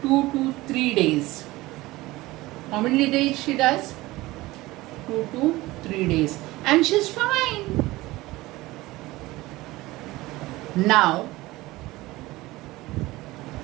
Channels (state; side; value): quieter; left; 19.2 dB